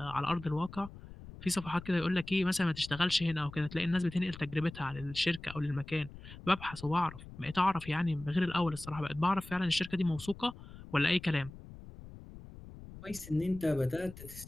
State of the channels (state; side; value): noise; left; rumble, 16 dB below the sound